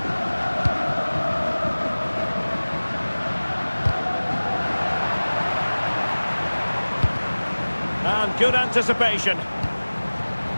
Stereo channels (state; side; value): inverted; both; correlation -1.00